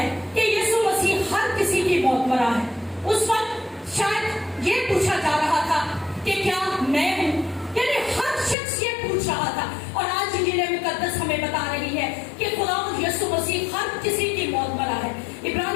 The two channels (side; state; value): right; drops out; at 8.6 s